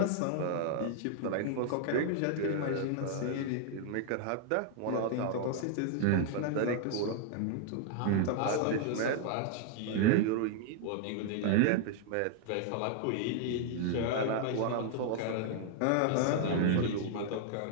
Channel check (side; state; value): both; different; correlation 0.00